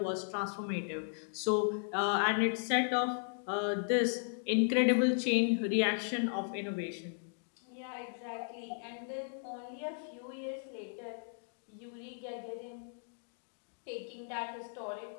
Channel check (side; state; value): right; silent; digital silence